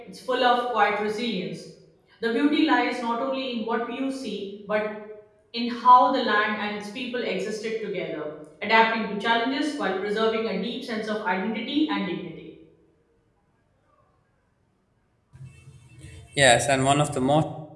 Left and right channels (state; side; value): identical; both; correlation 1.00